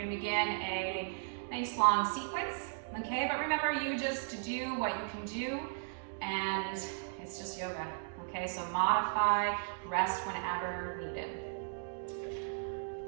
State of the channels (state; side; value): silent; left; digital silence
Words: to begin a nice long sequence, okay? But remember, you just do what you can do, and it's just yoga, okay? So modify, rest whenever needed.